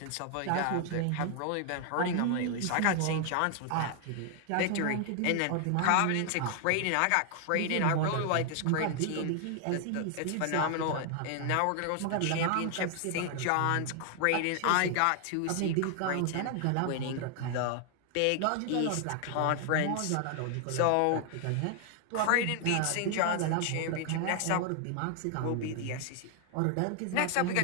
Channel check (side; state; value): both; different; correlation 0.00